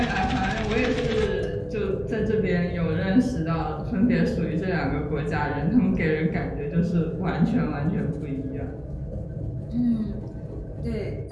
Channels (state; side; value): identical; both; correlation 1.00